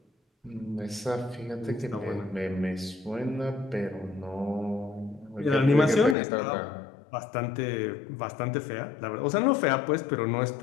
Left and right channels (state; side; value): drops out; right; at 6.2 s